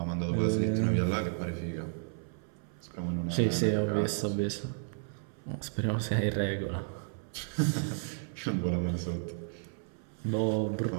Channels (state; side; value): silent; left; 56 dB below the other